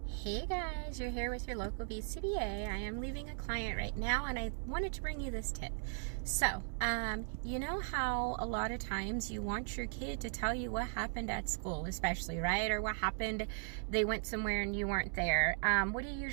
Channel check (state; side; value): silent; left; digital silence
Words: Hey guys, you're here with your local BCBA. I am leaving a client right now and I wanted to bring you this tip. So, you know how a lot of times you want your kid to tell you what happened at school, especially, right? Or what happened, they went somewhere and you weren't there. What do you